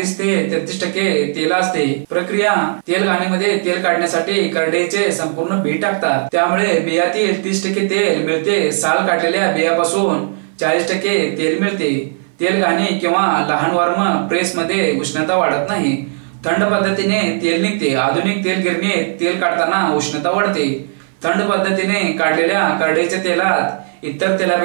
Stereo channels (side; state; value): left; silent; 60 dB below the other